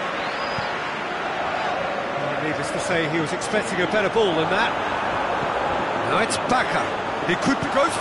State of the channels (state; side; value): noise; right; hum, 27 dB below the sound